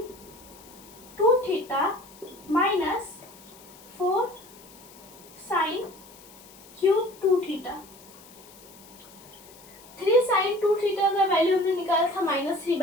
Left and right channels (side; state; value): left; noise; hiss, 22 dB below the sound